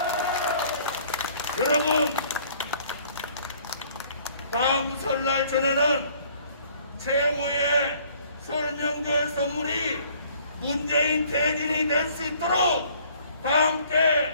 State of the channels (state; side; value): inverted; both; correlation -0.58